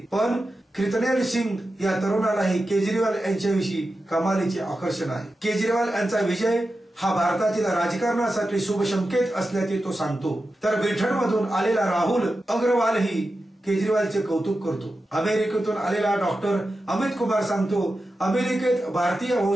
पण कृतनेल सिंग या तरुणालाही केजरीवाल यांच्याविषयी कमालीचे आकर्षण आहे। केजरीवाल यांचा विजय हा भारतातील राजकारणासाठी शुभ संकेत असल्याचे तो सांगतो। तर ब्रिटनमधून आलेला राहुल अग्रवालही केजरीवालचे कौतुक करतो। अमेरिकेतून आलेला डॉक्टर अमित कुमार सांगतो, अमेरिकेत भारतीय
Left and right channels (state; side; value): normal; both; correlation 0.91